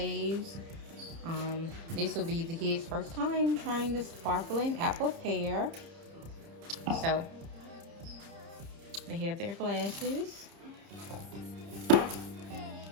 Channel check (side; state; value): left; late; 30 ms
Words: This will be the kids' first time trying the sparkling apple pear. So they have their glasses,